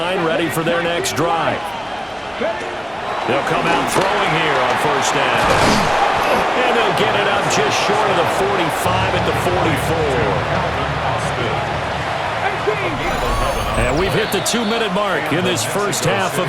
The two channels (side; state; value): both; identical; correlation 1.00